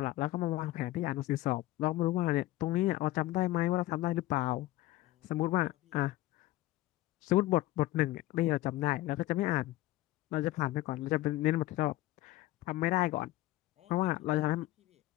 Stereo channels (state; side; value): quieter; right; 16.8 dB